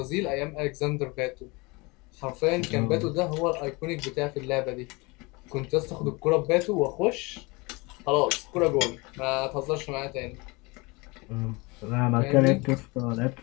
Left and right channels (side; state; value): right; quieter; 26.0 dB